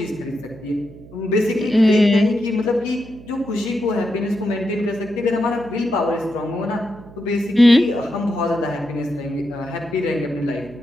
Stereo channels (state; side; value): noise; right; hum, 19 dB below the sound